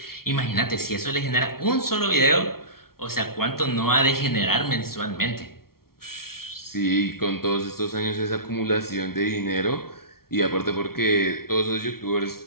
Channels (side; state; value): right; late; 0.94 ms